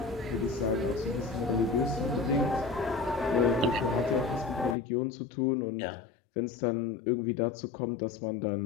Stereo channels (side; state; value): right; drops out; at 4.8 s